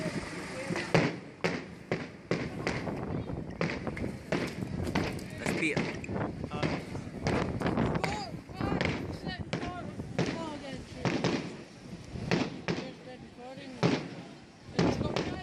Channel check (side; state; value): both; identical; correlation 1.00